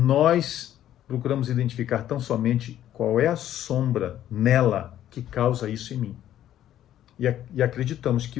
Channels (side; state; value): right; quieter; 11.8 dB